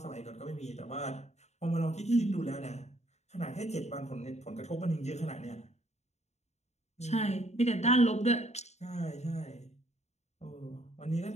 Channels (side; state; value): right; late; 0.32 ms